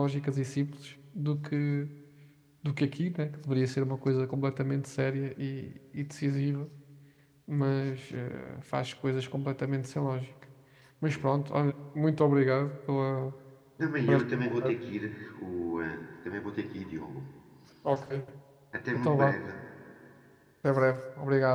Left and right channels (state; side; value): identical; both; correlation 1.00